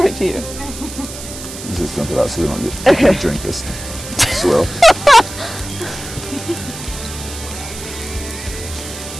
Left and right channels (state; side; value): noise; right; hiss, 11 dB below the sound